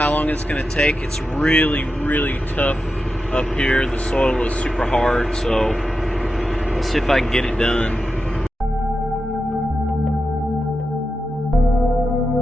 long it's going to take. It's really, really tough up here. The soil is super hard, so let's see if I can get it done.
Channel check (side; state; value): both; normal; correlation 0.90